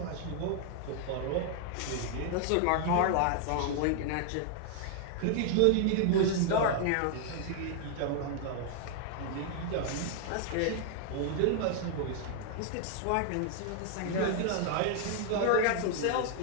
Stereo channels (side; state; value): both; different; correlation 0.00